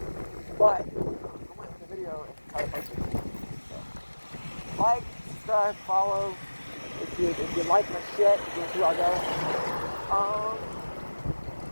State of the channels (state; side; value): inverted; both; correlation -1.00